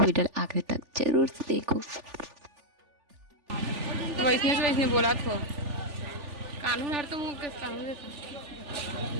आखिर तक जरूर से देखो। वैसने से वैसने बोला तो कानून हर तो मुँह के कानून देता।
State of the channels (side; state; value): left; late; 3.4 ms